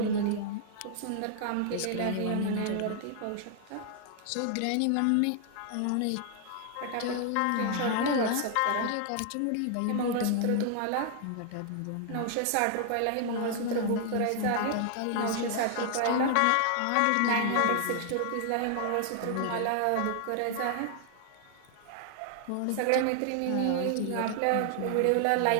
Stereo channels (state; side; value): different; both; correlation 0.00